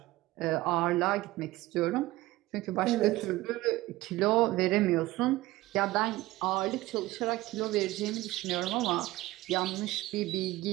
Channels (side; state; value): left; quieter; 18.3 dB